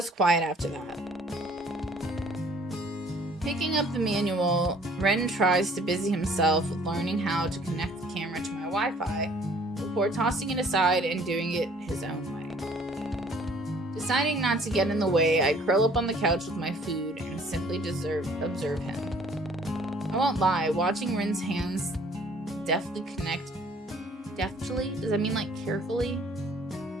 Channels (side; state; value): both; normal; correlation 0.57